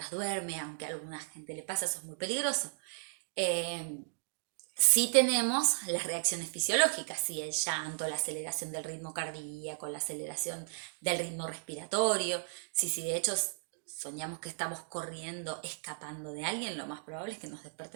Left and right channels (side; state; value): left; silent; digital silence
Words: duerme, aunque a alguna gente le pasa, eso es muy peligroso. Sí tenemos las reacciones fisiológicas, sí, el llanto, la aceleración del ritmo cardíaco, la aceleración del ritmo respiratorio. Sí, de hecho soñamos que estamos corriendo, escapando de alguien, lo más probable es que nos